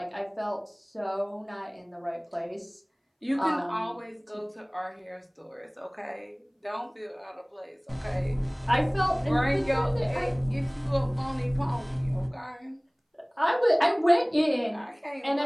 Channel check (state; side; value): identical; both; correlation 1.00